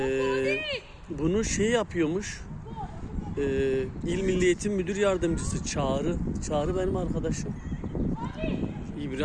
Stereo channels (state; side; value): identical; both; correlation 1.00